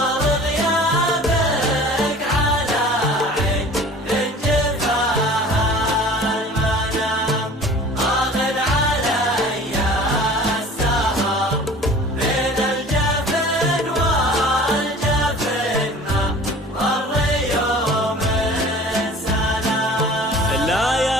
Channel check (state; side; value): normal; both; correlation 0.44